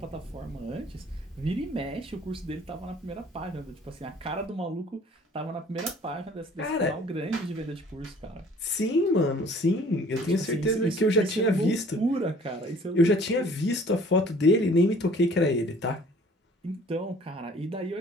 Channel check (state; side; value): normal; both; correlation 0.53